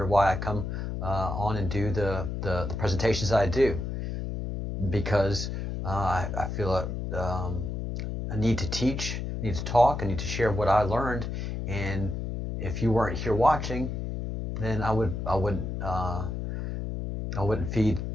why I come on and do the presentations I do, because I feel a need to teach, I need to talk, I need to share what I learned. And if you weren't here watching, then I wouldn't feed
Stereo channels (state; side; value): noise; left; hum, 4 dB below the sound